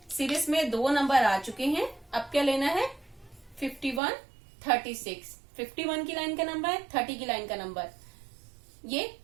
सीरीज में दो नंबर आ चुके हैं, अब क्या लेना है? 51, 36। 51 की लाइन का नंबर है, 30 की लाइन का नंबर, ये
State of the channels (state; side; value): drops out; left; at 4.0 s